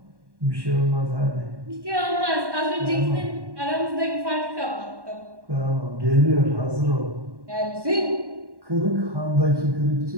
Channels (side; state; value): left; late; 1.1 ms